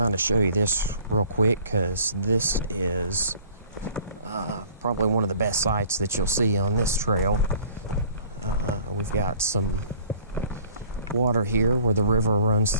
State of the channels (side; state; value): both; inverted; correlation -0.51